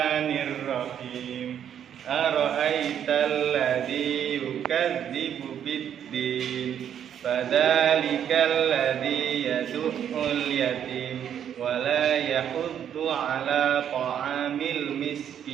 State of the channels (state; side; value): quieter; left; 9.3 dB